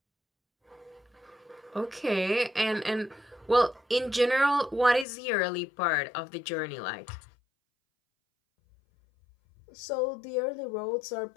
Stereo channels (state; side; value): drops out; right; at 5.1 s